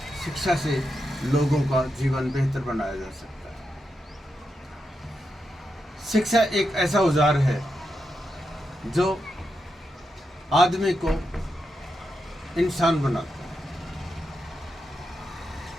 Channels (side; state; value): both; normal; correlation 0.86